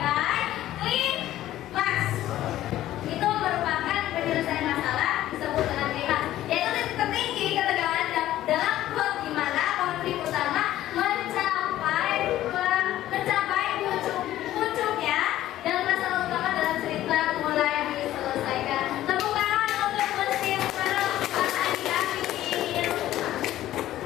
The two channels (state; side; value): quieter; right; 13.8 dB